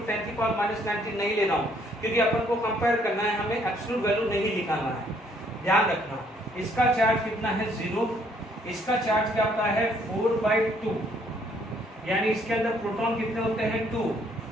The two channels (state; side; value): normal; both; correlation 0.66